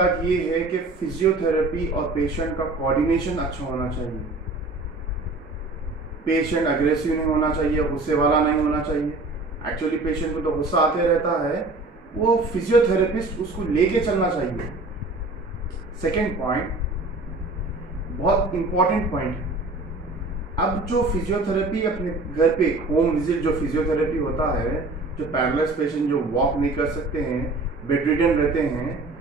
ये है कि फिजियोथेरेपी और पेशेंट का कोऑर्डिनेशन अच्छा होना चाहिए। पेशेंट अग्रेसिव नहीं होना चाहिए, गुस्से वाला नहीं होना चाहिए। एक्चुअली पेशेंट को तो गुस्सा आते रहता है, वो फिजियोथेरेपिस्ट उसको लेके चलना चाहिए। सेकेंड पॉइंट, बहुत इंपॉर्टेंट पॉइंट है। अब जो फिजियोथेरेपी अपने घर पे होम विजिट जो फिजियोथेरेपी होता है, जो पैरालाइज पेशेंट जो वॉक नहीं कर सकते हैं, बेडरिडन रहते हैं,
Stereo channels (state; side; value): quieter; left; 3.2 dB